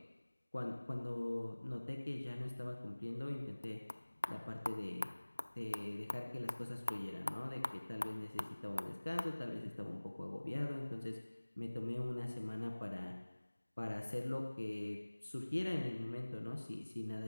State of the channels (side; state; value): both; inverted; correlation -1.00